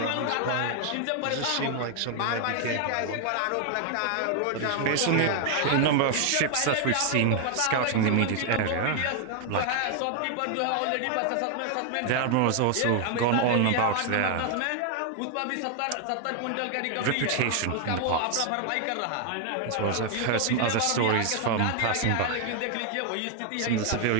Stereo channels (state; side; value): different; both; correlation 0.00